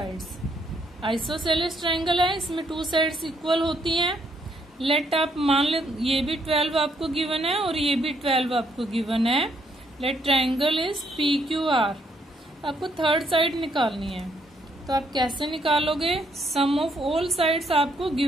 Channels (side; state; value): both; normal; correlation 0.72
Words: Isosceles triangle है, इसमें 2 sides equal होती हैं। Let आप मान ले ये भी 12 आपको गिवन है और ये भी 12 आपको गिवन है। Let triangle is PQR। आपको थर्ड साइड निकालनी है, तो आप कैसे निकालोगे? Sum of all sides आपको